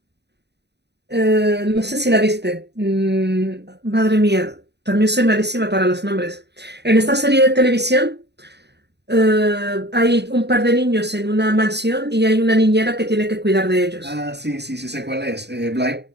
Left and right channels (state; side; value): late; left; 0.49 ms